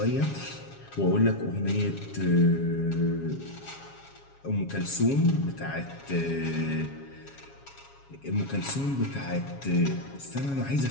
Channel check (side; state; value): right; late; 7.3 ms